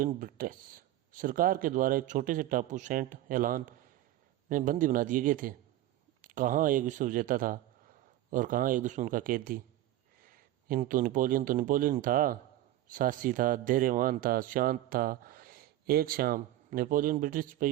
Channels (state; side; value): quieter; left; 14.3 dB